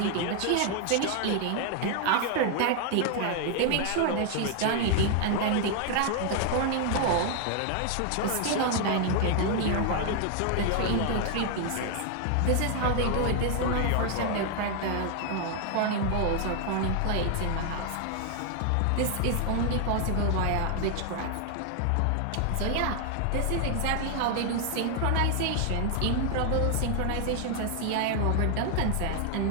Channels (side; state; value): both; different; correlation 0.00